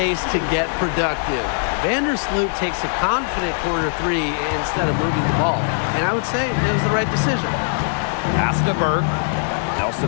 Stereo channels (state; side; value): silent; right; digital silence